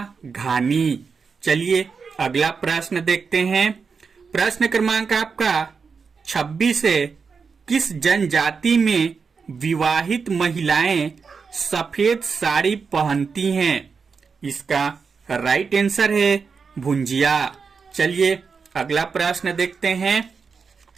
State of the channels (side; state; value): left; quieter; 5.4 dB